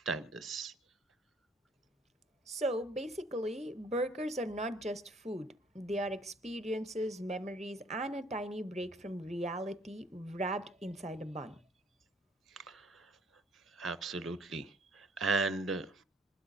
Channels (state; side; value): normal; both; correlation 0.60